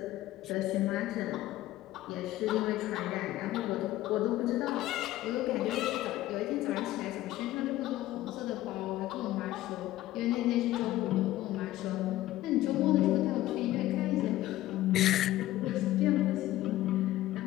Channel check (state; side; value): quieter; right; 15.3 dB